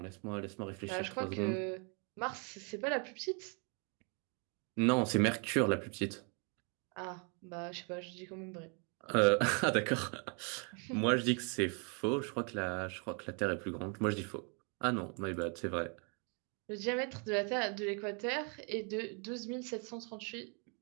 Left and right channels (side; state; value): left; quieter; 37.3 dB